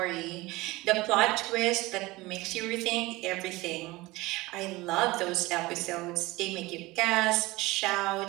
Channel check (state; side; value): quieter; left; 20.7 dB